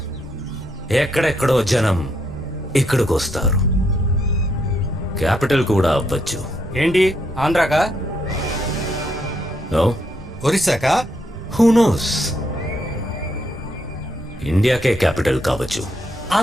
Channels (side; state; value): both; normal; correlation 0.76